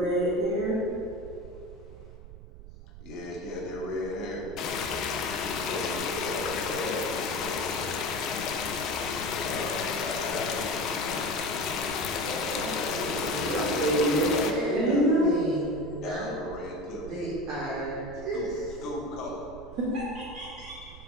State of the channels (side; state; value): right; noise; rumble, 15 dB below the sound